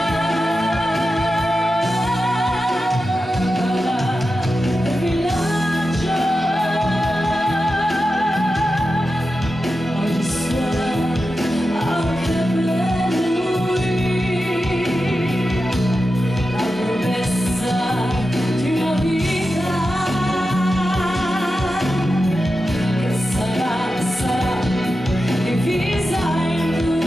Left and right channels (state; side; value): normal; both; correlation 0.91